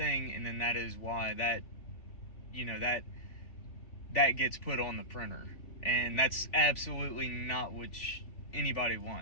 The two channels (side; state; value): right; late; 3.4 ms